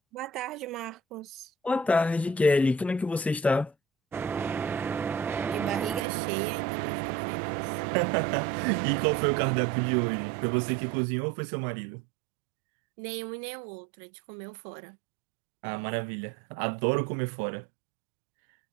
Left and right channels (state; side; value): drops out; left; at 6.1 s